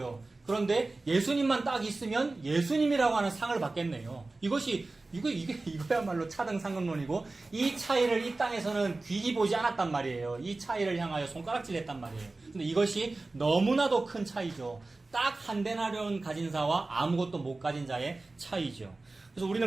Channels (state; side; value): quieter; left; 3.3 dB